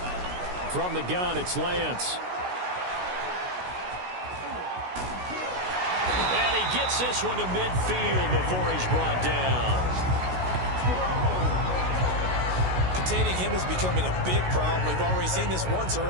From the gun, it's Lance. And he gets this one to midfield before he's brought down. Containing him is becoming a big problem. We've already seen this once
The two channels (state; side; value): late; left; 16 ms